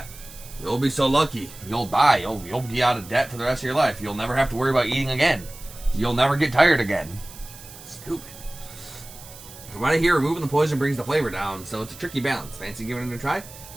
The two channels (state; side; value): noise; right; hiss, 17 dB below the sound